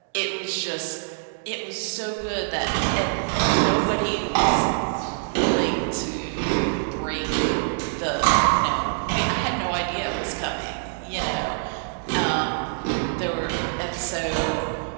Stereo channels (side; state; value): left; silent; digital silence